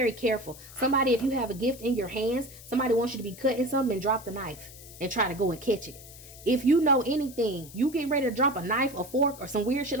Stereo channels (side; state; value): left; noise; hiss, 18 dB below the sound